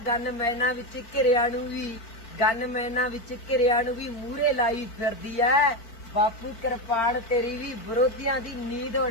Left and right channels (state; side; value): late; right; 4.5 ms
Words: ਵਿੱਚ ਘਿਰਿਆਂ ਨੂੰ ਵੀ, ਗਨਮੈਨਾਂ ਵਿੱਚ ਘਿਰਿਆਂ ਨੂੰ ਵੀ ਮੂਹਰੇ ਲਾਈ ਫਿਰਦੀ ਐ। ਬਾਪੂ ਕਿਰਪਾਨ ਤੇਰੀ ਵੀ ਵਿਰੋਧੀਆਂ ਦੀ ਨੀਂਦ